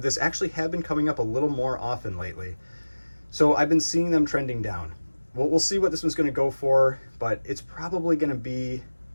this actually have been coming up a little more often lately. So I've been seeing them trending down. We'll see what this one's going to go for, but it's probably going to be,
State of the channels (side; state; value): both; inverted; correlation -1.00